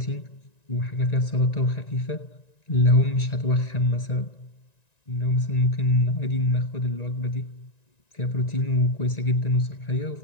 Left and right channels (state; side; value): late; right; 1.9 ms